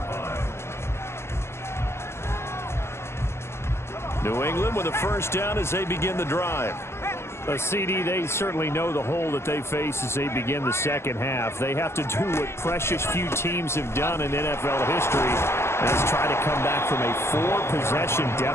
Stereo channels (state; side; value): late; right; 0.12 ms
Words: line. New England with a first down as they begin the drive. A CD, they certainly know the hole that they face as they begin the second half. They have to do what precious few teams have done in NFL history, and that's try to come back from a 4-possession